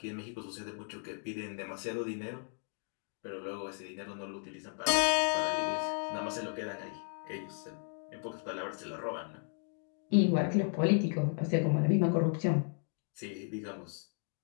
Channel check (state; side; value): silent; right; 55 dB below the other